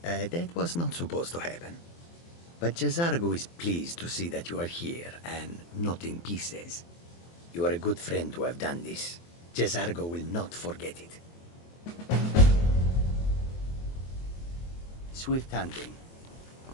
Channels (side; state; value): right; late; 23 ms